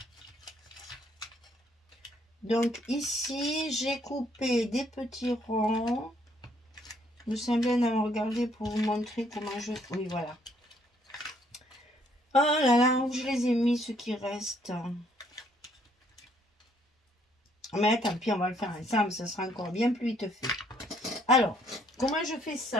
Donc, ici, j'ai coupé des petits ronds. Vous semblez en regarder pour vous montrer comment je... Oui, voilà. Oh là là, où je les ai mis, ceux qui restent. Mais tant pis, on va le faire ensemble, ça sera encore bien plus vite fait. Alors, comment je fais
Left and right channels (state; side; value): normal; both; correlation 0.67